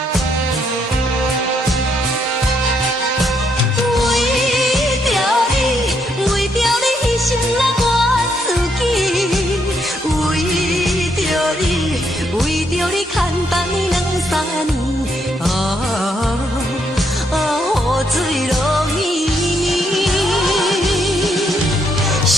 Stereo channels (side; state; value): both; normal; correlation 0.75